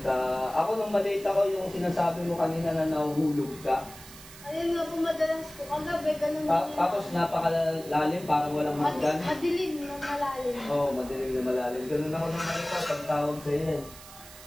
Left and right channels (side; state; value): right; noise; hiss, 17 dB below the sound